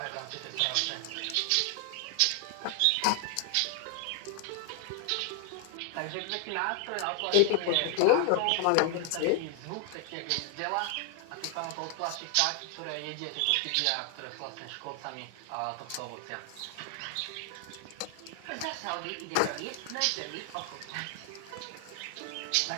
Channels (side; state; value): both; different; correlation 0.00